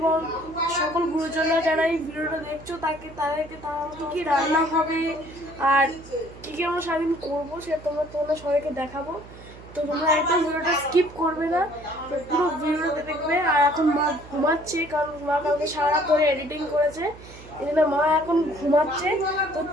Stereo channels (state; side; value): noise; right; hum, 19 dB below the sound